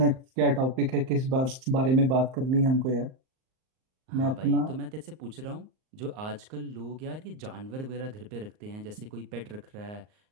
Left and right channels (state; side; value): late; left; 38 ms